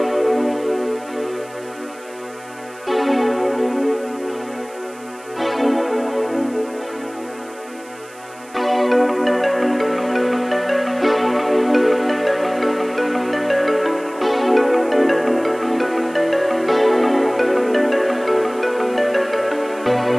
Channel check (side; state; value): right; noise; hiss, 23 dB below the sound